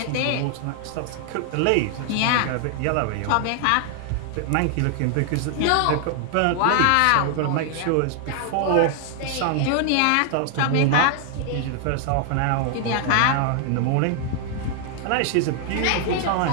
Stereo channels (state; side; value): different; both; correlation 0.00